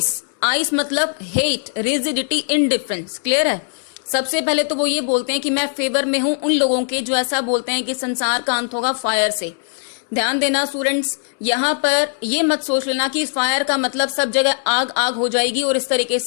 मतलब हेट, रिजिडिटी, इनडिफरेंस। क्लियर है। सबसे पहले तो वो ये बोलते हैं कि मैं फेवर में हूं उन लोगों के जो ऐसा बोलते हैं कि संसार का अंत होगा फायर से। ध्यान देना स्टूडेंट्स, यहाँ पर ये मत सोच लेना कि फायर का मतलब सब जगह आग आग हो जाएगी और इस तरीके से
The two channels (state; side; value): silent; right; 66 dB below the other